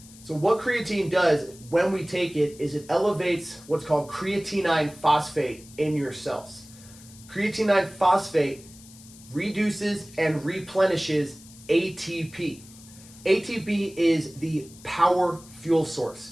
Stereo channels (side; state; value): left; noise; hiss, 21 dB below the sound